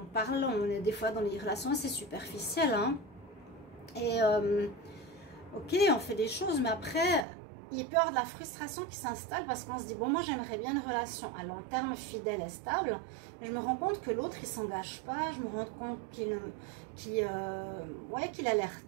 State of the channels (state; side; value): drops out; left; at 7.2 s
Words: parle, on est des fois dans les relations assez superficielles. Hein. Et ok, on fait des choses, mais après, il peut y avoir de la frustration qui s'installe parce qu'on se dit, bon, moi j'aimerais bien une relation à long terme, fidèle et stable, mais je me rends compte que l'autre il s'engage pas, je me rends compte qu'il a l'air